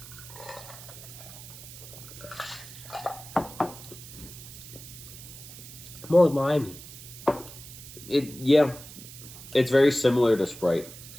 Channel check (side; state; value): right; noise; hiss, 15 dB below the sound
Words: More limey. it's very similar to Sprite,